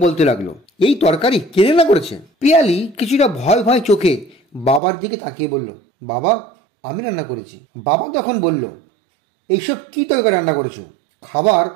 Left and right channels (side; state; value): left; drops out; at 4.8 s